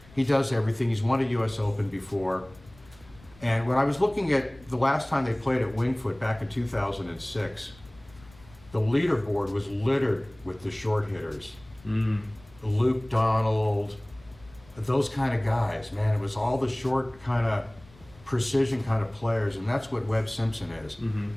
He does everything. He's won a U.S. Open before. And when I was looking at the last time they played at Wingfoot back in 2006, the leaderboard was littered with the short hitters. Luke Donald, those kind of guys, man. It was all the short kind of precision kind of players, and that's what Webb Simpson is.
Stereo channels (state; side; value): noise; left; rumble, 25 dB below the sound